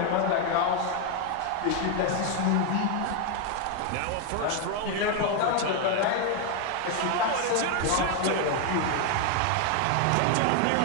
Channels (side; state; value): both; different; correlation 0.01